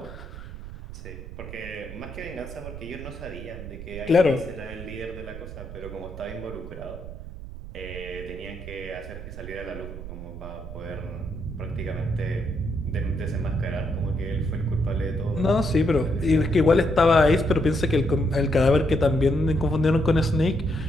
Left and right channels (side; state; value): right; noise; rumble, 11 dB below the sound